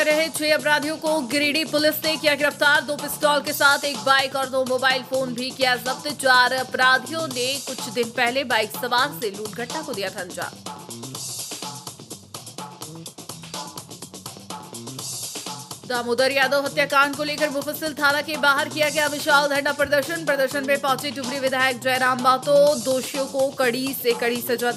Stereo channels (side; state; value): both; identical; correlation 1.00